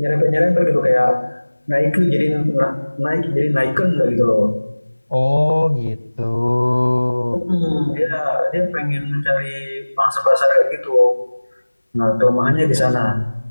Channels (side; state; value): both; inverted; correlation -1.00